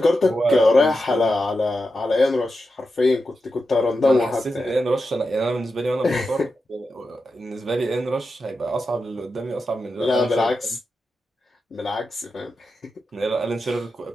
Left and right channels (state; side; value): normal; both; correlation 0.89